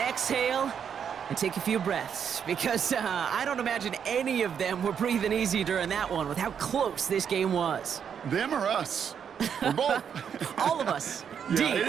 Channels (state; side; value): quieter; left; 7.7 dB